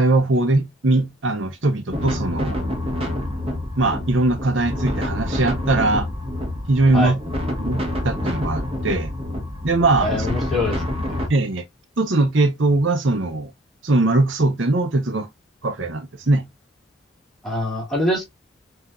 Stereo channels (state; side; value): normal; both; correlation 0.57